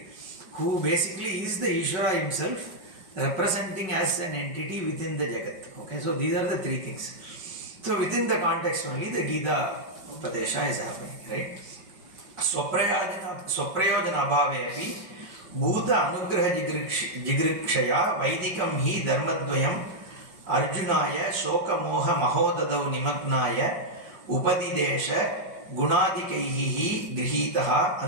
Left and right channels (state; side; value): late; left; 5.3 ms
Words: Who basically is the Ishvara himself, representing as an entity within the Jagat. Okay, so these are the three things. So within the context only, the Gita Upadesha is happening, right? Swaprayojana abhavepi Bhuta anugraha jigrikshaya Vaidikam hi dharmadvayam Arjunaya shoka moha mahodadau nimagnaya Upadidesha gunadikaihi grihitaha